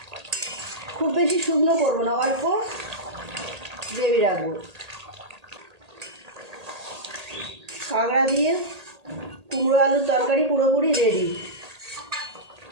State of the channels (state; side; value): late; left; 1.8 ms